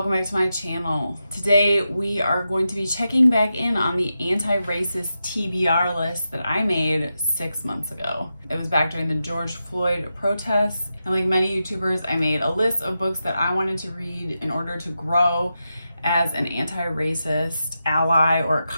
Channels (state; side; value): inverted; both; correlation -0.88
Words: back to my channel. Today we are going to be checking back in on the anti-racist TBR list that I made 6 months ago. It was back during the George Floyd protests, and like many YouTubers, I made a list of books that I wanted to read in order to grow as an anti-racist ally or